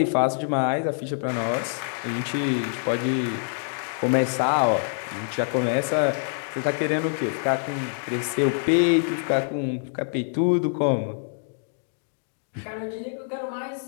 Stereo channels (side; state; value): right; silent; digital silence